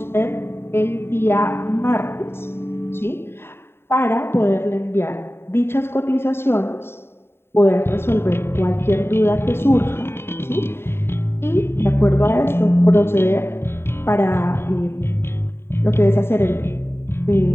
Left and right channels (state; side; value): late; right; 0.11 ms